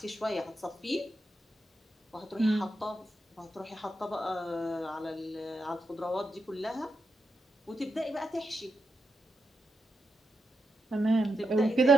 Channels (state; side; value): normal; both; correlation 0.85